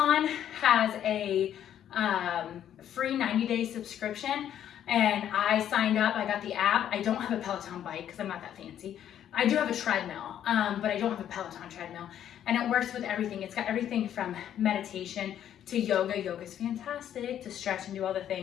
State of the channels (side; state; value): right; quieter; 10.4 dB